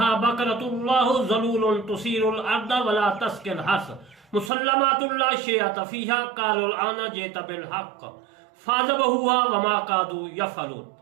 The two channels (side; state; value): left; drops out; at 4.5 s